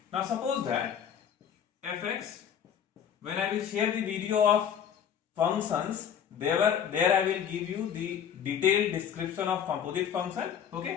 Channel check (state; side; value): quieter; right; 8.5 dB